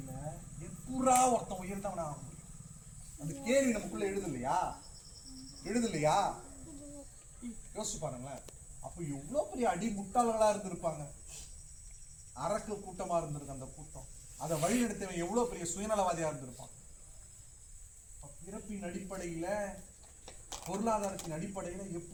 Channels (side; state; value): both; identical; correlation 1.00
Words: எப்பூரா ஒருத்தன் உயர்ந்தவனா ஆக முடியும்? அந்த கேள்வி நமக்குள்ள எழுதலையா? யோசிச்சு பாருங்களேன். அப்போ எவ்வளவு பெரிய அடி முட்டாளர்களா இருந்திருப்பாங்க. அரக்கு கூட்டமா இருந்திருக்கு அந்த கூட்டம். அதை வழிநடத்தவன் எவ்வளவு பெரிய சுயநலவாதியா இருந்திருப்பான். பிறப்பின் அடிப்படையில, பொருளாதாரத்தின் அடிப்படையில